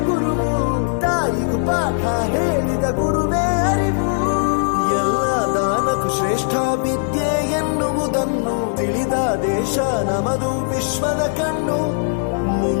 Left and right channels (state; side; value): silent; right; 56 dB below the other